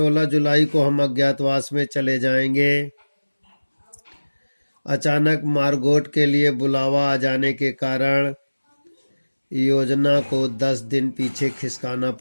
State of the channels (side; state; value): both; inverted; correlation -1.00